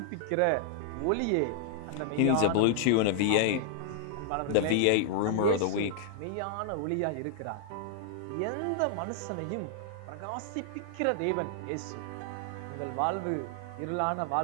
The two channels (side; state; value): both; different; correlation 0.00